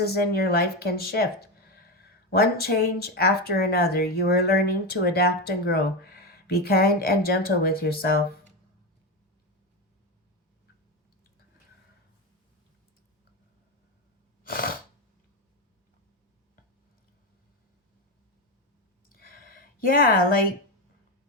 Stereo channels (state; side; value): normal; both; correlation 0.14